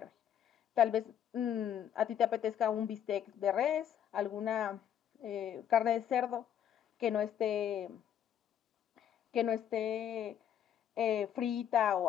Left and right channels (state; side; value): quieter; right; 9.7 dB